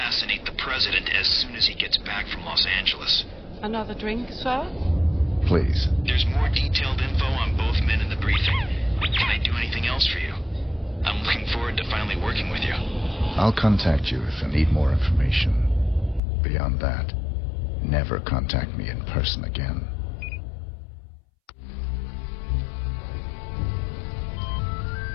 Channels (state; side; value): drops out; right; at 16.2 s